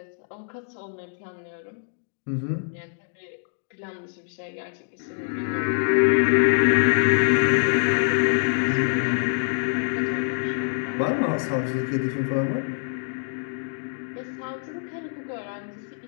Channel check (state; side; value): silent; right; 62 dB below the other